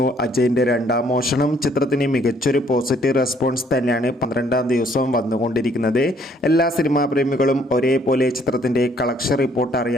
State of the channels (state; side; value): normal; both; correlation 0.64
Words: അജയൻ്റെ രണ്ടാം മോഷണം. ചിത്രത്തിന് മികച്ചൊരു പോസിറ്റീവ് റെസ്പോൺസ് തന്നെയാണ് 12-ാം ദിവസവും വന്നുകൊണ്ടിരിക്കുന്നത്. എല്ലാ സിനിമാ പ്രേമികളും ഒരേപോലെ ചിത്രത്തിൻ്റെ കളക്ഷൻ റിപ്പോർട്ട്